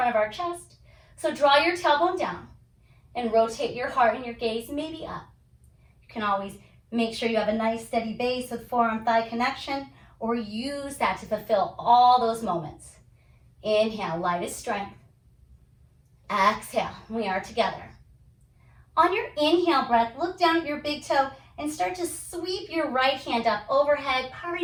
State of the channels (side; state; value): both; identical; correlation 1.00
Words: of our chest. So draw your tailbone down and rotate your heart and your gaze maybe up. You can always make sure you have a nice steady base with forearm thigh connection, or use that to fulfill all those moments. Inhale, lightest strength. Exhale, we are together. On your inhale breath, look down at your big toe and start to sweep your right hand up overhead.